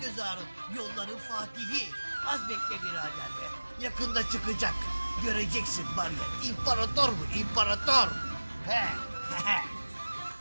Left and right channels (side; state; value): both; inverted; correlation -1.00